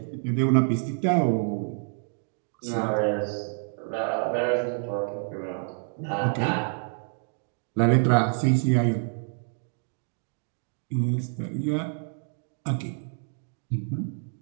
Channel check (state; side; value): silent; left; 56 dB below the other